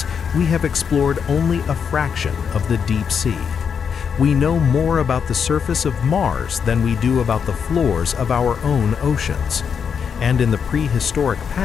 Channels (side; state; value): right; quieter; 6.9 dB